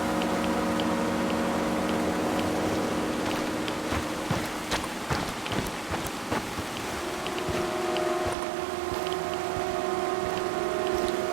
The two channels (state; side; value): drops out; left; at 8.3 s